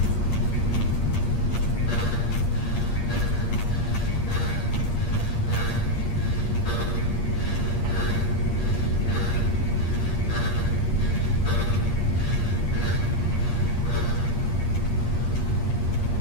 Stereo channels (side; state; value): right; late; 10 ms